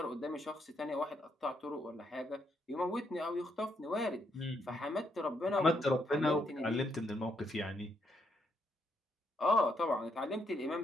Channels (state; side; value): normal; both; correlation 0.76